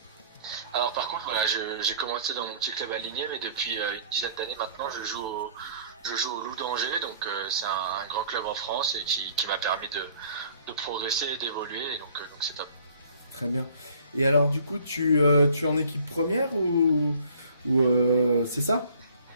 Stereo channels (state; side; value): inverted; both; correlation -0.54